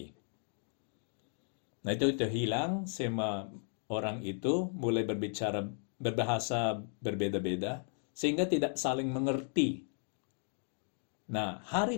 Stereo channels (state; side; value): silent; right; 54 dB below the other